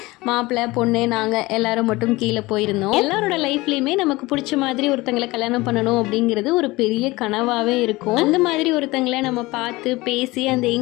மாப்பிள்ளை பொண்ணு நாங்கள் எல்லாரும் மட்டும் கீழே போயிருந்தோம். எல்லாரோட லைஃப்லேயுமே நமக்கு பிடிச்ச மாதிரி ஒருத்தங்களை கல்யாணம் பண்ணணும் அப்படிங்கிறது ஒரு பெரிய கனவாகவே இருக்கும். அந்த மாதிரி ஒருத்தங்களை நம்ம பார்த்து பேசி அந்த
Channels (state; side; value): quieter; right; 21.0 dB